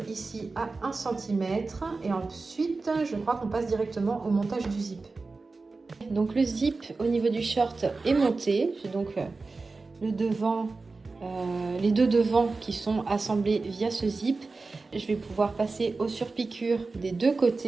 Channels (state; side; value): quieter; left; 3.8 dB